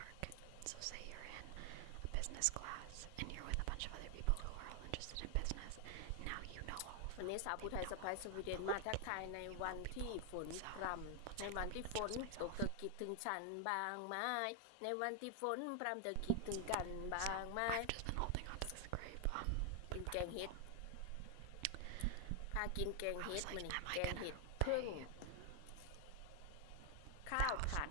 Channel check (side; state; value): both; different; correlation 0.00